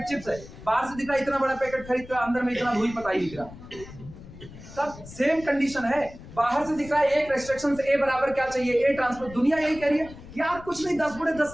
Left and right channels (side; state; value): left; noise; rumble, 17 dB below the sound